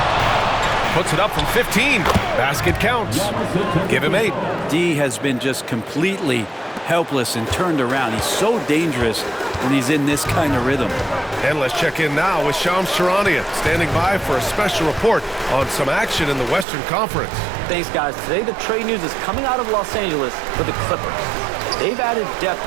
Puts it up from 15. Basket counts. Give him 8. D has been just completely helpless and turned around. He's so dangerous when he's in this kind of rhythm. And let's check in now with Shams Charania, standing by for a special report on some action in the Western Conference. Thanks, guys. Today, the trade news is coming out of Los Angeles for the Clippers. They've added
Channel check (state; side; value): drops out; left; at 16.7 s